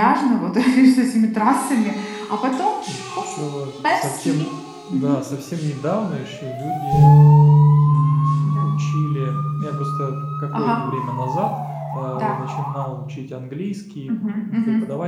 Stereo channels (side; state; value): both; identical; correlation 1.00